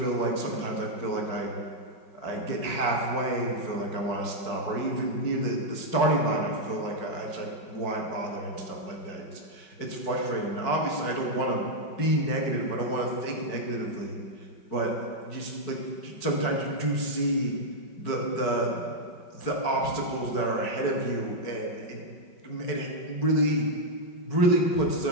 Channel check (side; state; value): right; late; 5.3 ms